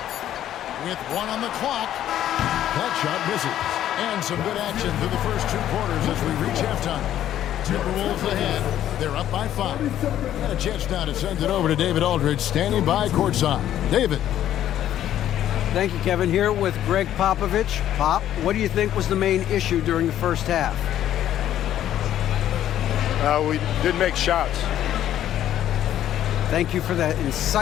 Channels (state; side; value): quieter; right; 11.6 dB